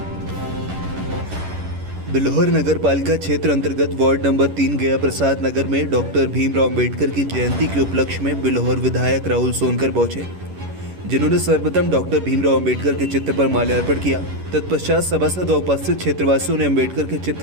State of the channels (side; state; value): left; late; 11 ms